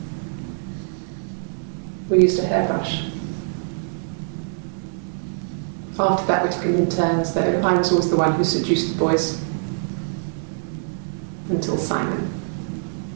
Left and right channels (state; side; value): silent; left; digital silence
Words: We used a hairbrush. After that, we took it in turns, though. I was always the one who seduced the boys. Until Simon.